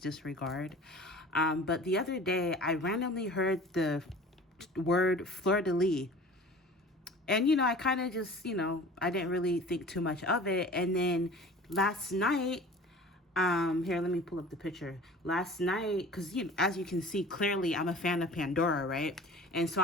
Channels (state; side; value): normal; both; correlation 0.42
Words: disregard. But the other day, I randomly heard the word Fleur-de-lis. And, I kind of just, I didn't really think too much of it. And then last night, here, let me pull up the picture. Last night, because as you can see clearly, I'm a fan of Pandora, right? And so